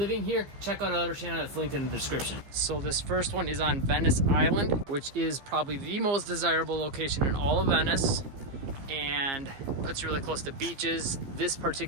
here, check out our other channel that's linked in the description. So this first one is on Venice Island, which is probably the most desirable location in all of Venice, and puts you really close to beaches. This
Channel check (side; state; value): left; late; 15 ms